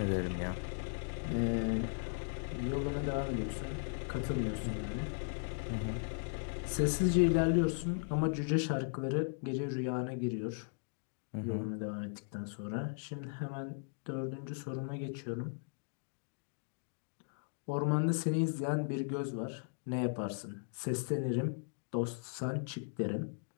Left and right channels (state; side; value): silent; right; digital silence